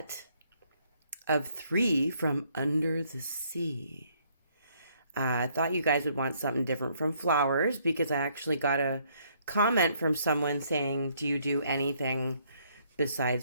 of 3 from under the sea. I thought you guys would want something different from flowers because I actually got a comment from someone saying, do you do anything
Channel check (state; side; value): inverted; both; correlation -0.68